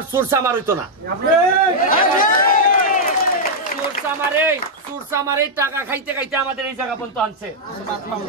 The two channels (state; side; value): normal; both; correlation -0.04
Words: সুরসামার হইতো না। সুরসামারে টাকা খাইতে খাইতে আমাদের এই জায়গা পর্যন্ত আনছে।